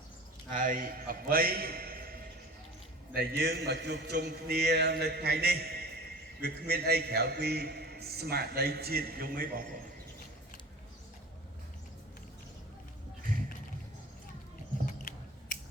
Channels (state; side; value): normal; both; correlation 0.39